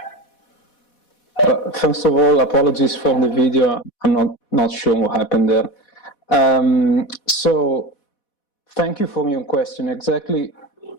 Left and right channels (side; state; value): right; late; 4.1 ms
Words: First of all, apologies for the video. I'm not sure what happened there. So, thank you for your question. Exactly,